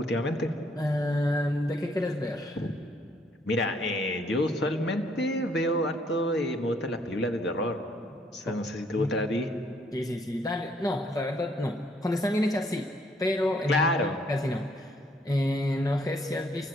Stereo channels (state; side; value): normal; both; correlation 0.67